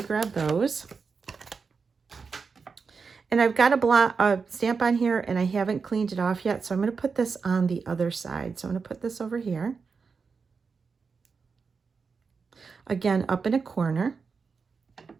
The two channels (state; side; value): quieter; left; 5.1 dB